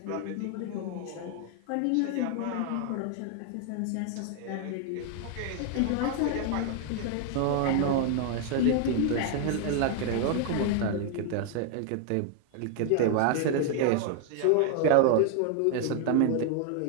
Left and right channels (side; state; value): both; different; correlation 0.00